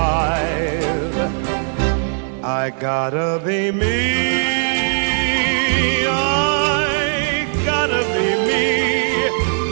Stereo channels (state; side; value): silent; left; 61 dB below the other